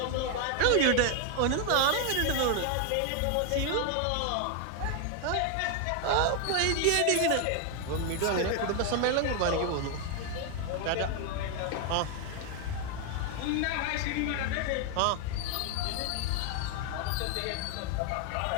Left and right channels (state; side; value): different; both; correlation 0.01